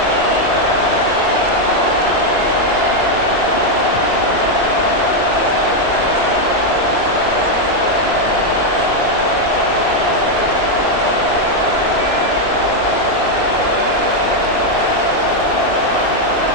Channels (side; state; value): right; late; 2.6 ms